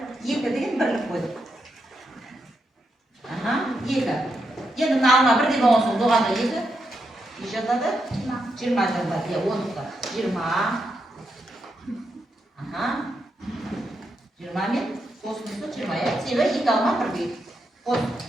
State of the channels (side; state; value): both; normal; correlation 0.83